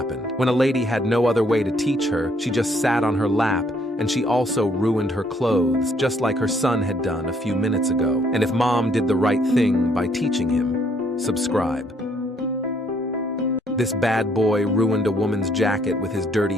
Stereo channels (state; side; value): normal; both; correlation 0.67